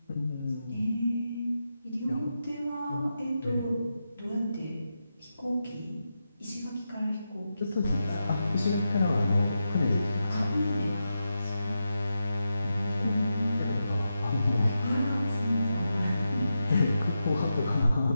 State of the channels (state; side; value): inverted; both; correlation -0.88